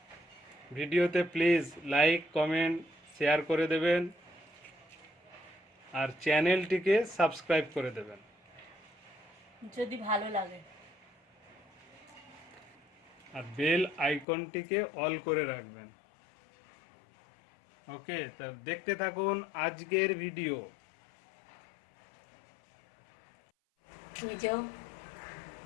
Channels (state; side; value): drops out; right; at 14.2 s